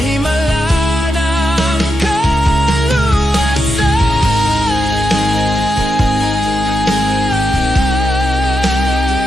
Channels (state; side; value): normal; both; correlation 0.85